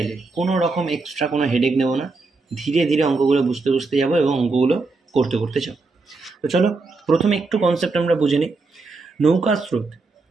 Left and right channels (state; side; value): quieter; left; 3.8 dB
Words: কোনো রকম এক্সট্রা কোনো হেডেক নেব না। ধীরে ধীরে অঙ্কগুলো বুঝতে বুঝতে যাবো এবং অঙ্কগুলো করতে করতে যাব। তো চলো প্রথমে একটু কনসেপ্ট আমরা বুঝে নিই। নৌকা স্রোত,